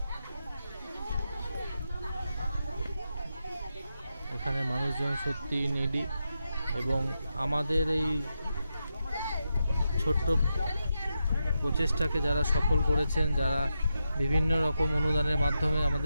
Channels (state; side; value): inverted; both; correlation -0.87